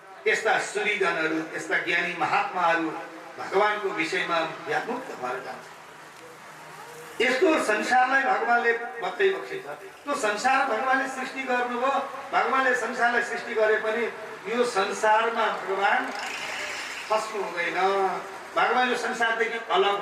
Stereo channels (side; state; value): both; identical; correlation 1.00